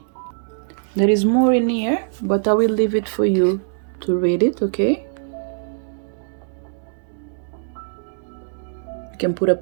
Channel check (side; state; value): left; silent; digital silence